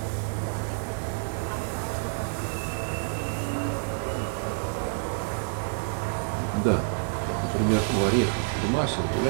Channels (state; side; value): silent; left; digital silence